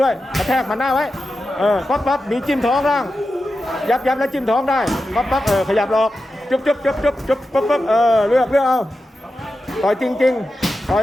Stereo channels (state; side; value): normal; both; correlation 0.91